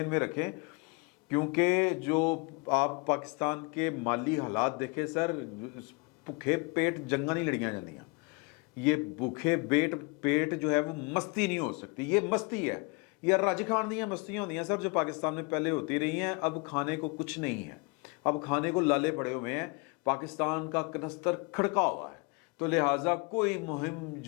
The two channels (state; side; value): quieter; right; 30.3 dB